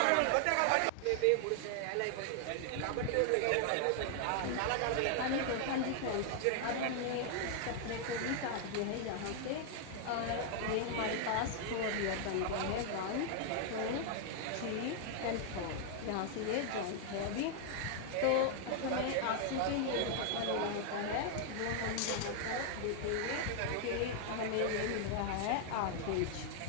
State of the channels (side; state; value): both; different; correlation 0.00